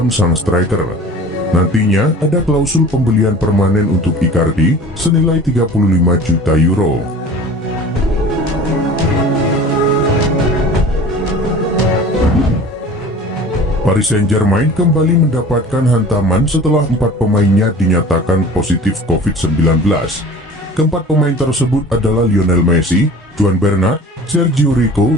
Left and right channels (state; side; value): normal; both; correlation 0.42